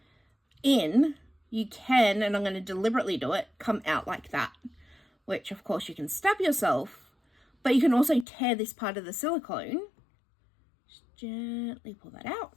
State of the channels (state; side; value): drops out; right; at 8.2 s